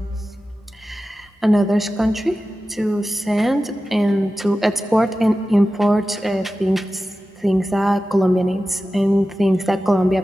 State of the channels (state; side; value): normal; both; correlation 0.94